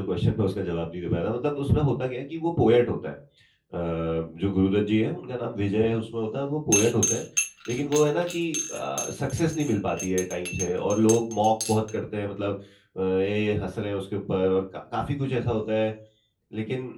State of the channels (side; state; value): both; identical; correlation 1.00